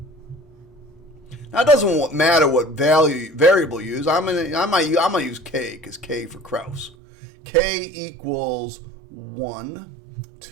Now it doesn't matter what variable you use. I might use k because k for Krause. K equals 1,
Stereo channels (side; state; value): left; drops out; at 7.0 s